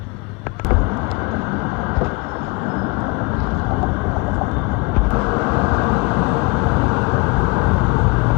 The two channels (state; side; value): quieter; right; 25.9 dB